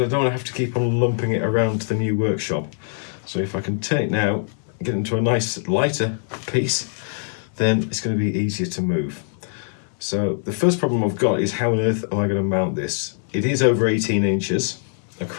don't want to have to keep on lumping it around to the new workshop. So if I can turn it now, get it into a nice lighter piece, then it's going to be easier to move. So the first problem I've got is how on earth am I going to mount this? It is over 18 inches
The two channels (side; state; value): right; silent; digital silence